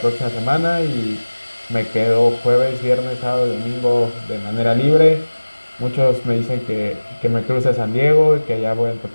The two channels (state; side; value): inverted; both; correlation -1.00